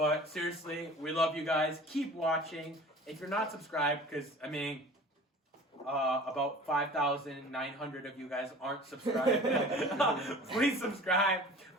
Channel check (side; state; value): both; normal; correlation 0.43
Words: seriously, we love you guys. Keep watching. If you're not subscribed, because I mean, about 5,900 of you guys aren't subscribed. Please subscribe.